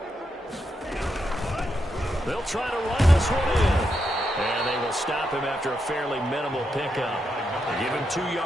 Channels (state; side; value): normal; both; correlation 0.83